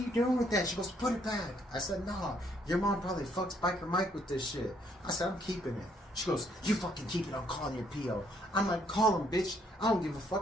doing with that? She goes, put it back. I said, no, your mom probably fucks Biker Mike with this shit. I said, I'm keeping it. She goes, you fucking keep it, I'm calling your P.O. I'm like, call him, bitch. I don't give a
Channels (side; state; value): both; normal; correlation 0.68